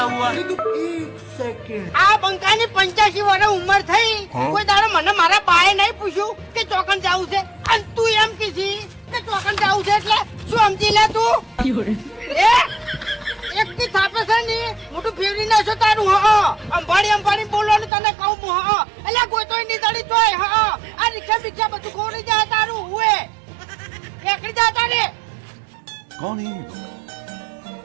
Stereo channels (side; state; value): left; drops out; at 17.9 s